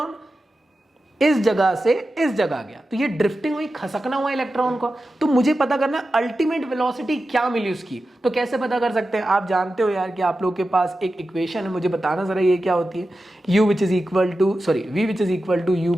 इस जगह से इस जगह गया। तो ये ड्रिफ्टिंग हुई, खसकना हुआ इलेक्ट्रॉन को। तो मुझे पता करना है अल्टीमेट वेलोसिटी क्या मिली उसकी। तो कैसे पता कर सकते हैं? आप जानते हो यार कि आप लोग के पास एक इक्वेशन है, मुझे बताना जरा ये क्या होती है। v which is equal to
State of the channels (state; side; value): normal; both; correlation 0.92